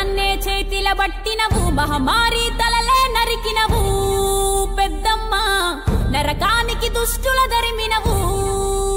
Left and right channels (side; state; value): both; identical; correlation 1.00